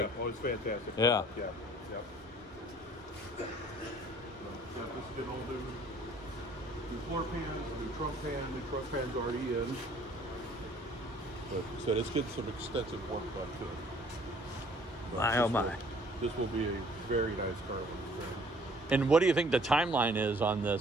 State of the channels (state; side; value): normal; both; correlation 0.56